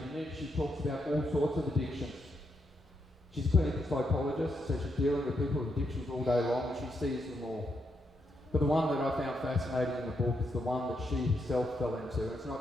then she talks about all sorts of addictions. She's a clinical psychologist, so she's dealing with people with addictions all day long, and she sees them all. But the one that I found fascinating in the book is the one that she herself fell into. It's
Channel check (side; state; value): both; normal; correlation 0.80